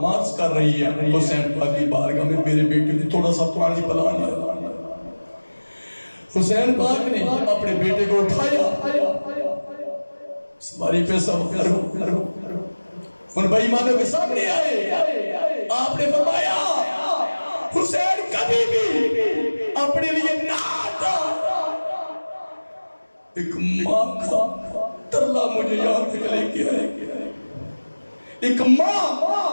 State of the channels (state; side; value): inverted; both; correlation -1.00